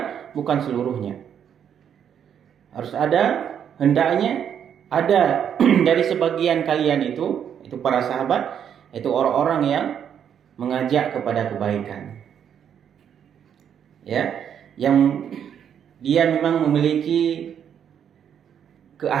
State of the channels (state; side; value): quieter; left; 8.6 dB